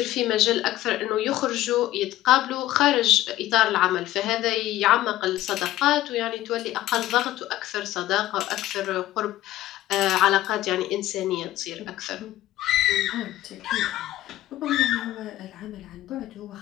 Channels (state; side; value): quieter; right; 15.0 dB